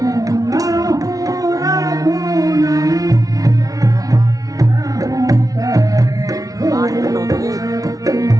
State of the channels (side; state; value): left; late; 0.18 ms